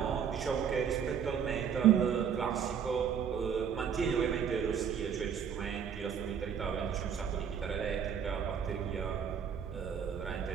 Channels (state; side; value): quieter; left; 7.7 dB